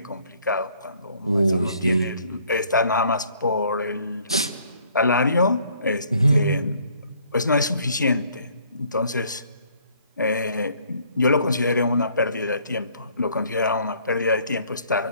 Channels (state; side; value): inverted; both; correlation -0.61